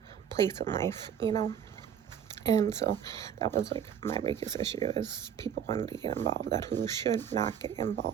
place in life, and so that was like my biggest issue is people wanted to get involved that who should not get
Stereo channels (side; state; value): left; quieter; 8.6 dB